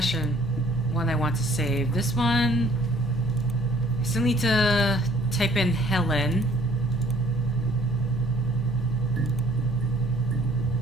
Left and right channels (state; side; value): normal; both; correlation 0.57